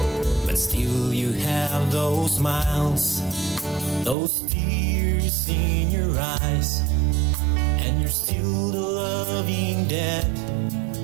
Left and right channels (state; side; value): drops out; left; at 4.2 s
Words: but still you have those smiles, those tears in your eyes, and you're still the loving dad